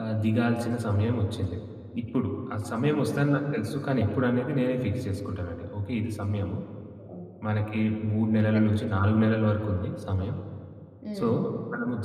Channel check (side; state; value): both; identical; correlation 1.00